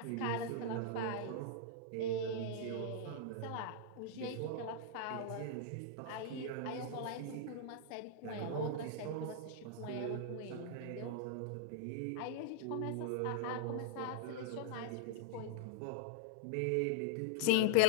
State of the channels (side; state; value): both; different; correlation -0.02